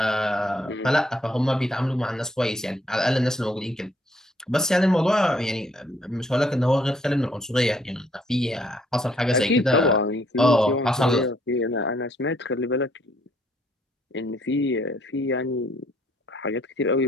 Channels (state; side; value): normal; both; correlation 0.67